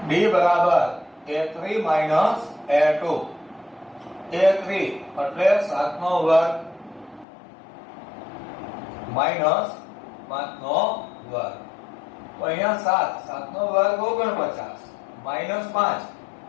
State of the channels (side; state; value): right; drops out; at 7.2 s